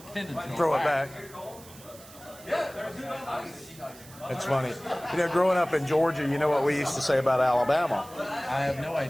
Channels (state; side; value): noise; right; hiss, 20 dB below the sound